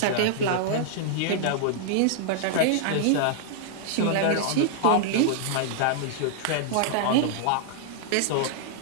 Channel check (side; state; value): both; different; correlation -0.01